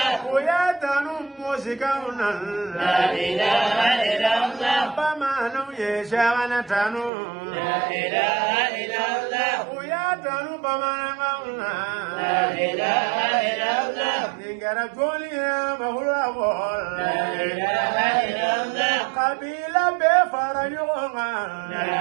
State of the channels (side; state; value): left; drops out; at 7.1 s